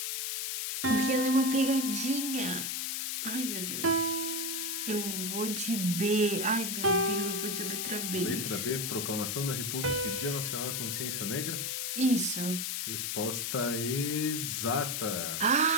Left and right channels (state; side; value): noise; left; hiss, 1 dB below the sound